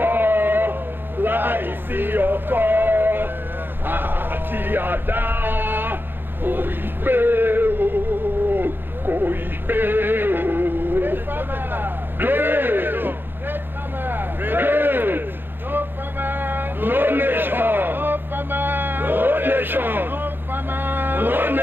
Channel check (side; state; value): left; late; 0.099 ms